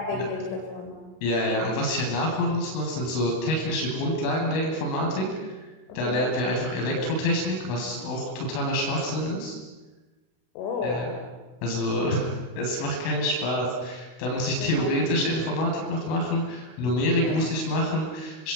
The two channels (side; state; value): right; late; 32 ms